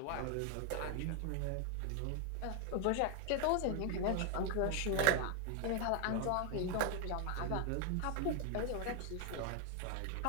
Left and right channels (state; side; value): different; both; correlation 0.00